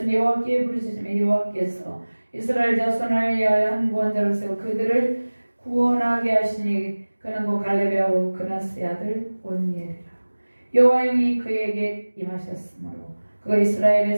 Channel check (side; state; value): both; inverted; correlation -1.00